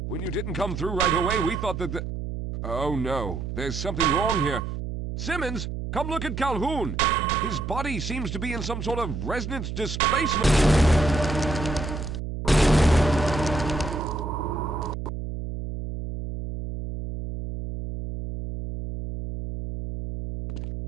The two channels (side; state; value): right; noise; hum, 6 dB below the sound